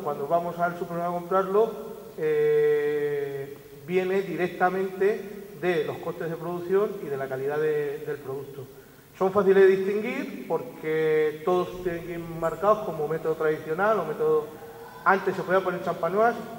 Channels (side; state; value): both; identical; correlation 1.00